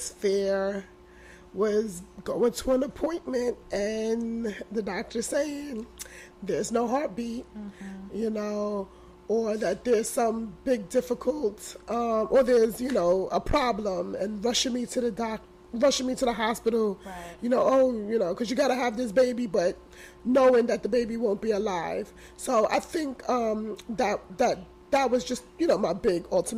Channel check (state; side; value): identical; both; correlation 1.00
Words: fear was going to an appointment and the doctor saying, there's no heartbeat, you know, or that there's some big difficult, or there's, you know, a problem, and rushing me to the hospital, Right. you know, oh, you know, because you got to have this baby, but knowing that the baby won't be alive. So I think that was just, you know, my big